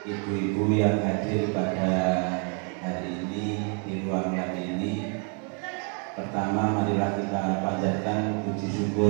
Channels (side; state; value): left; quieter; 39.8 dB